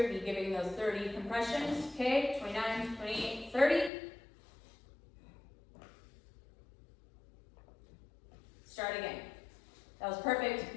would be giving those 30 compressions. Okay, 29, 28, 30. Start again. That was perfect,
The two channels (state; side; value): drops out; right; at 3.9 s